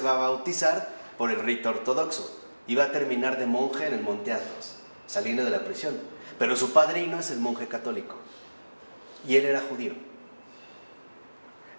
a bautizar por el rito ortodoxo y va a terminar de monje en el Monte Athos, saliendo de la prisión. Pero su padrino es el monje católico y él era judío.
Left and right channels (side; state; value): both; inverted; correlation -1.00